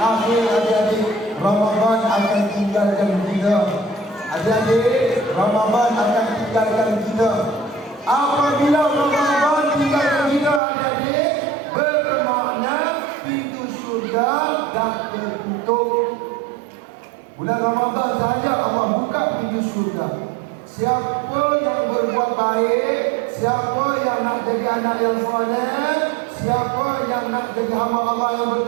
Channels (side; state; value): left; drops out; at 10.6 s